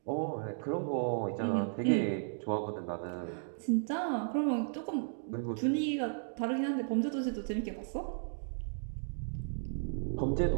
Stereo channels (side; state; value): left; silent; digital silence